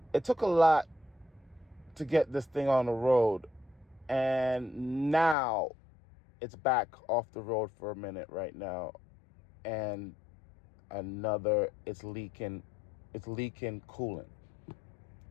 it took a lot to get this thing on the road, and now it's back off the road for a minute right now, and it's leaking coolant,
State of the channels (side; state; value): right; drops out; at 5.4 s